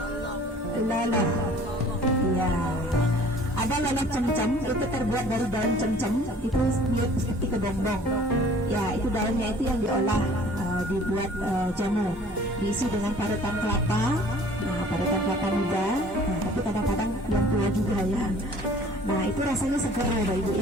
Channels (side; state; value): both; normal; correlation 0.51